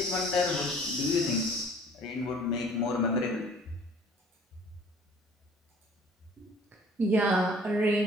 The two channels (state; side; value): normal; both; correlation 0.52